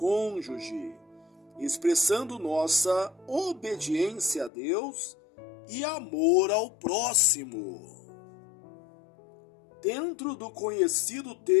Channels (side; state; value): right; drops out; at 4.5 s